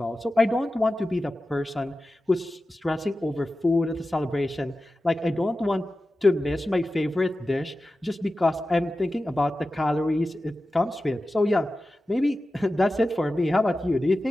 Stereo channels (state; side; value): normal; both; correlation 0.94